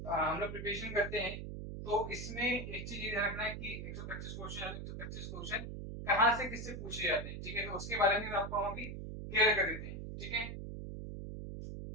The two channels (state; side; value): noise; right; hum, 7 dB below the sound